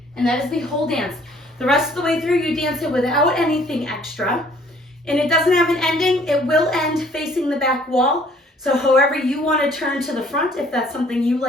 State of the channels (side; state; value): both; normal; correlation 0.58